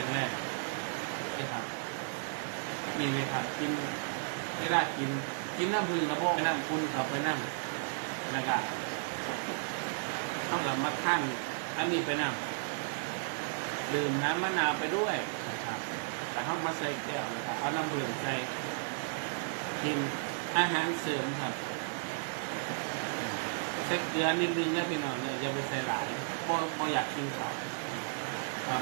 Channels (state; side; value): silent; left; digital silence